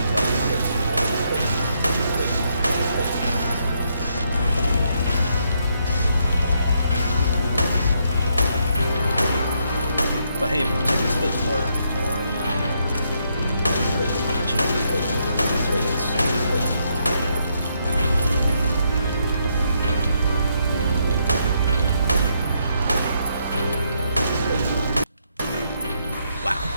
But hey, more tickets, but more opportunity for tickets. Wow,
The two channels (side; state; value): both; inverted; correlation -0.76